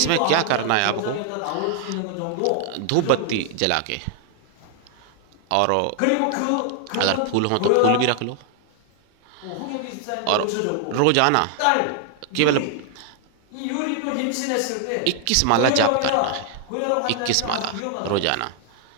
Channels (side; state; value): both; different; correlation 0.00